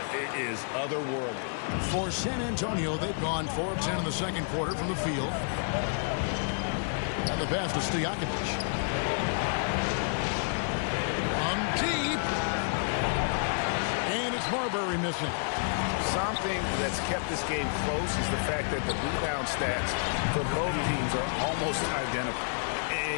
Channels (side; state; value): right; silent; 58 dB below the other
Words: is otherworldly. For San Antonio, they've gone 4 of 10 in the second quarter from the field. And the pass to Stojakovic. On deep. And it's Marbury missing. Something that's kept this game close is the fact that the rebound stats for both teams are almost identical.